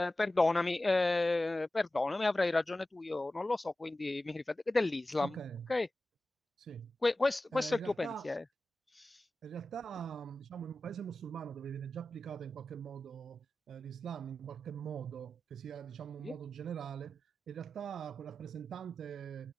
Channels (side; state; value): both; normal; correlation 0.94